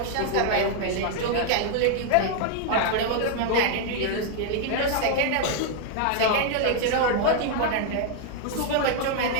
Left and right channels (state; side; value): different; both; correlation 0.00